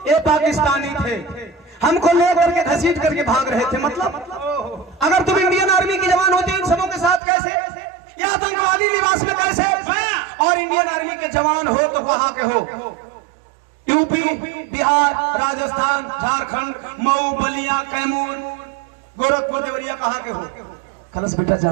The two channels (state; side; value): drops out; left; at 7.2 s